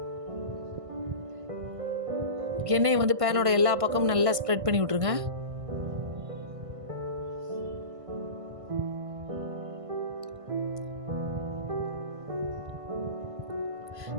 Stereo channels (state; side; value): late; left; 1.5 ms